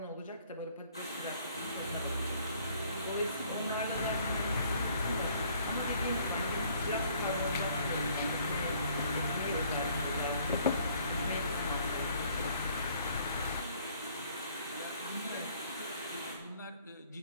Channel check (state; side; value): inverted; both; correlation -0.61